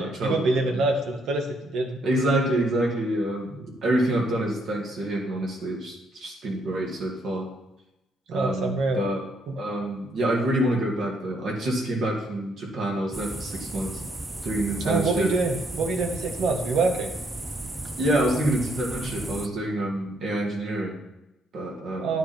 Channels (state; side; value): normal; both; correlation 0.71